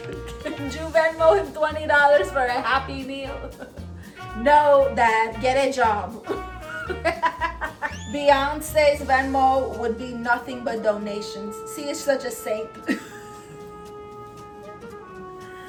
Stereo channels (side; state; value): both; identical; correlation 1.00